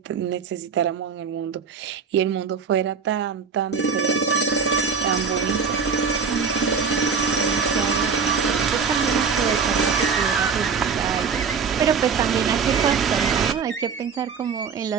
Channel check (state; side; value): quieter; left; 5.9 dB